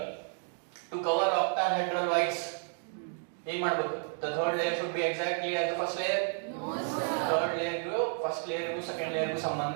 ಟು ಕವರ್ ಆಕ್ಟಾಹೆಡ್ರಲ್ ವೈಡ್ಸ್ ಏನ್ ಮಾಡ್ಬೇಕು? The third layer should be exactly as the first layer. No sir. Third layer ಗೂ first layer ಗೂ second layer ಗೂ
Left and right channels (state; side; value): silent; left; 57 dB below the other